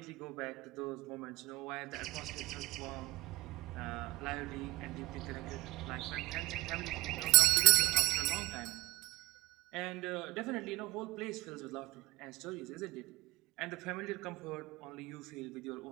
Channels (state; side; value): quieter; left; 21.8 dB